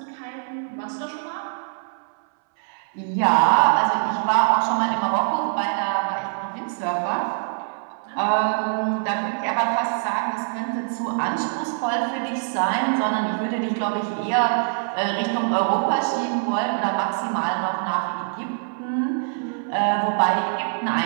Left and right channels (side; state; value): left; silent; 63 dB below the other